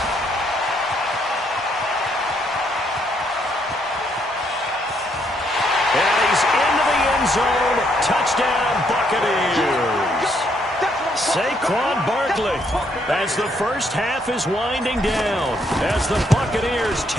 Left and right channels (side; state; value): both; normal; correlation 0.72